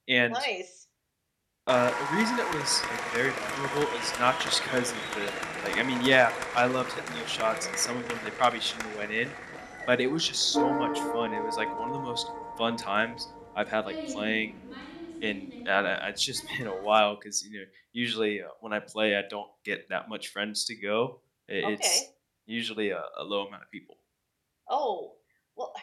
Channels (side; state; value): both; identical; correlation 1.00